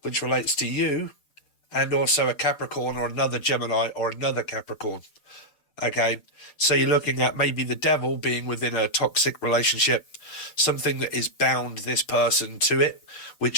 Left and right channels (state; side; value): late; right; 6.7 ms